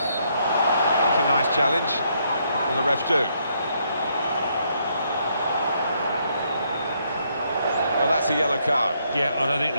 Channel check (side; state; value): both; inverted; correlation -0.73